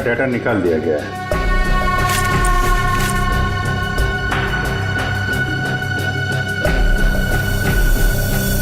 डाटा निकाल दिया गया है।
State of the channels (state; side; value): identical; both; correlation 1.00